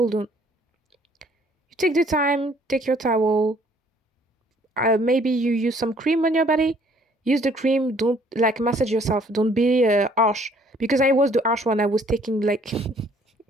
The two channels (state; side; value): normal; both; correlation 0.61